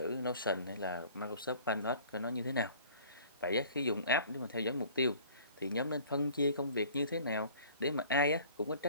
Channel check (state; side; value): inverted; both; correlation -0.50